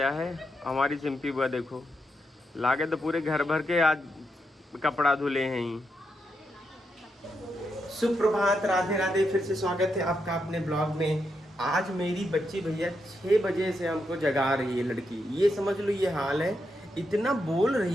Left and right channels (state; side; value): normal; both; correlation 0.83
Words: है। हमारी सिंपी बुआ देखो लागे तो पूरे घर भर के आज कपड़ा धुले हैं ही। सुप्रभात, राधे राधे। फिर से स्वागत है आपका अपने ब्लॉग में। आज मेरी बच्ची भैया 6 बजे से हमको जगा रही है लड़की। ये समझ लो ये हाल है। इतना बोल